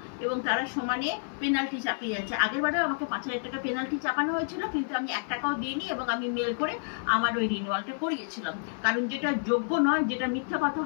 এবং তারা সমানে পেনাল্টি চাপিয়ে যাচ্ছে। আগেরবারেও আমাকে 5,000 টাকা পেনাল্টি চাপানো হয়েছিল, কিন্তু আমি 1 টাকাও দিইনি এবং আমি মেল করে আমার ওই রিনিউয়ালটা করিয়েছিলাম। কারণ যেটা যোগ্য নয়, যেটা মিথ্যা কথা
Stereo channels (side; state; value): right; silent; 56 dB below the other